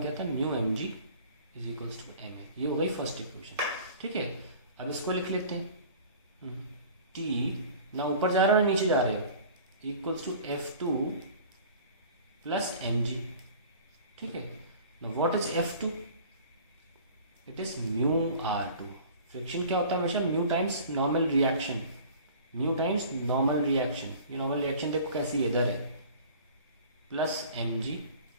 क्या था, mu M G is equals to M A. ये हो गई फर्स्ट इक्वेशन, ठीक है। अब इसको लिख लेते हैं, T ना ऊपर जा रहे हो ना नीचे जा रहे हो, equals to F2 plus M G, ठीक है। ना what is F2, it is mu R2। Friction क्या होता है हमेशा, mu times normal reaction, mu times normal reaction. ये नॉर्मल रिएक्शन देखो कैसी इधर है, plus M G.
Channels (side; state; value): both; inverted; correlation -0.45